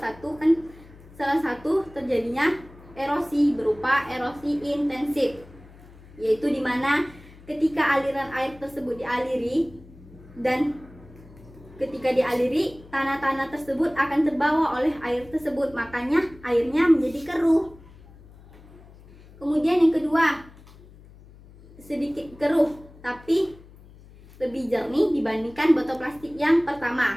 satu terjadinya erosi berupa erosi intensif, yaitu di mana ketika aliran air tersebut dialiri dan ketika dialiri tanah-tanah tersebut akan terbawa oleh air tersebut, makanya airnya menjadi keruh. Kemudian yang kedua, sedikit keruh tapi lebih jernih dibandingkan botol plastik yang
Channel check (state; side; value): noise; left; hum, 22 dB below the sound